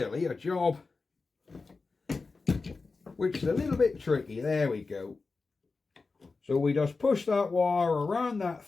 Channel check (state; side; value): quieter; right; 4.1 dB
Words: a job which is a little bit tricky. There we go. So we just push that wire around that